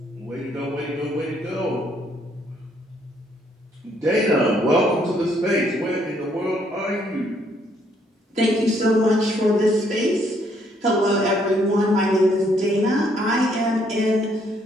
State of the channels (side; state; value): both; normal; correlation 0.69